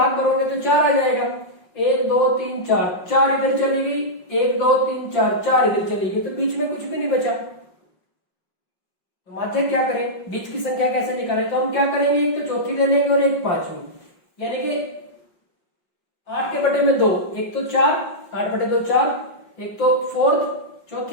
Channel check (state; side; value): late; right; 5.5 ms